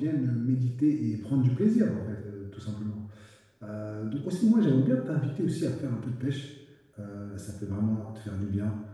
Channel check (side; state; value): both; identical; correlation 1.00